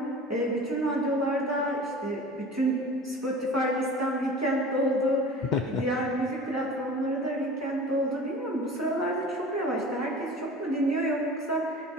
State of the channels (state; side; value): normal; both; correlation 0.39